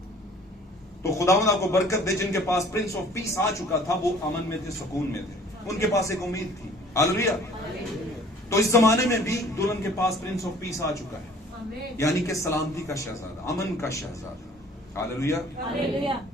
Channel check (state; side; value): normal; both; correlation 0.53